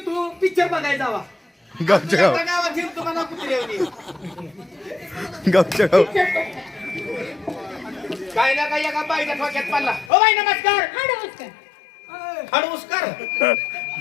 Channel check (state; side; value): drops out; right; at 10.1 s